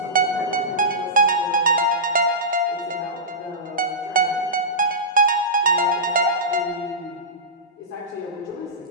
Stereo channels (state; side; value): normal; both; correlation -0.17